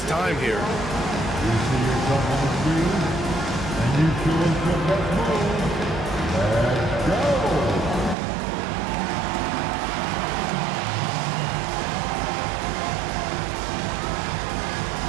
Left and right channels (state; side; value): drops out; left; at 8.2 s